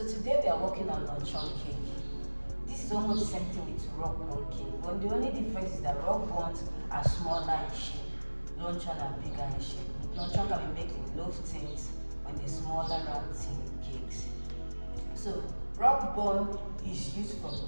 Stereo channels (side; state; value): both; inverted; correlation -1.00